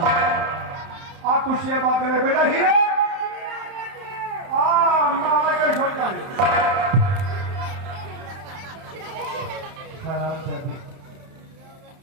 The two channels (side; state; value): left; late; 31 ms